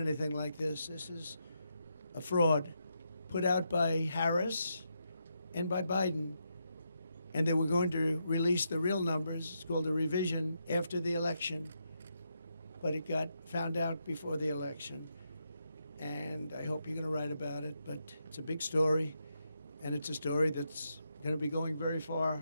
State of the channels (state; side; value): inverted; both; correlation -0.82